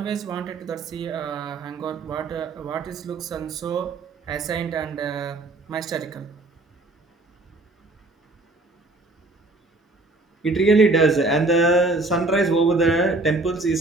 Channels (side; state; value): left; quieter; 3.0 dB